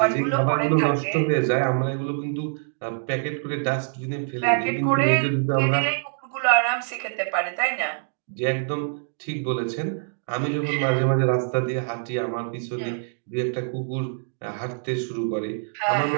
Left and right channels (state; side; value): silent; left; digital silence